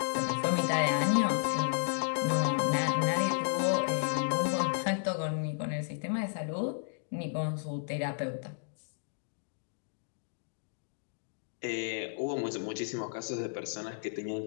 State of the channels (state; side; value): silent; right; digital silence